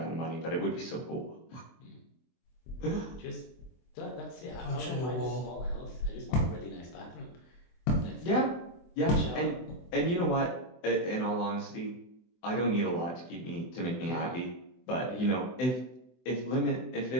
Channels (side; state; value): right; late; 23 ms